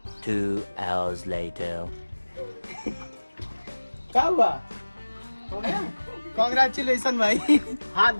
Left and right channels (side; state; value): both; inverted; correlation -1.00